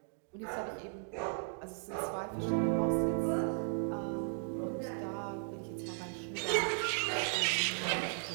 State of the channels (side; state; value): left; silent; 54 dB below the other